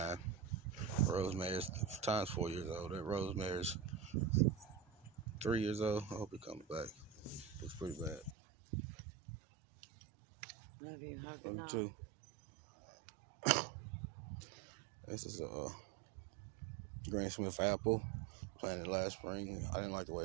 Rosemary's, Time's 4 years old. That Rosemary's 3 years old. I hope he comes back. Looks pretty bad. Love you. Hug Love you too. This is a Greensmith apple. Planted last spring. I didn't like the way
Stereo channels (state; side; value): drops out; left; at 8.3 s